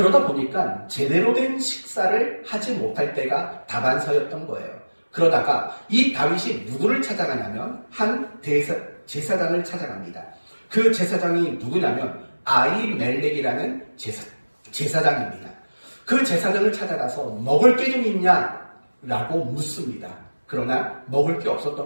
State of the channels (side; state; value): both; inverted; correlation -1.00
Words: 보니까 제대로 된 식사를 하지 못할 때가 다반사였던 거예요. 그러다가 이 다윗이 누구를 찾아가냐면 한 제사장을 찾아갑니다. 그 제사장이 누구냐면 아히멜렉이라는 제사장입니다. 그 제사장을 찾아가서 먹을 게 좀 있냐? 라고 묻습니다. 그러나 먹을 게 없었던